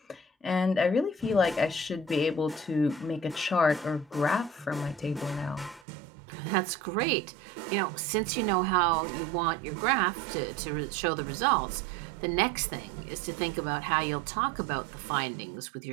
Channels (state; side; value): drops out; left; at 5.9 s